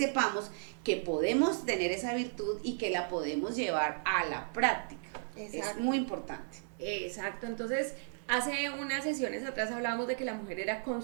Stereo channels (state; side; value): silent; left; digital silence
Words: que podemos tener esa virtud y que la podemos llevar a la práctica. Exacto. Es muy importante. Exacto. Entonces, hace unas sesiones atrás hablábamos de que la mujer era